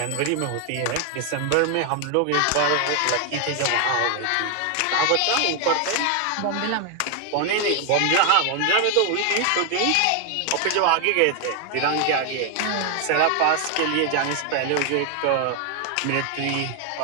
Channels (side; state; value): both; different; correlation 0.00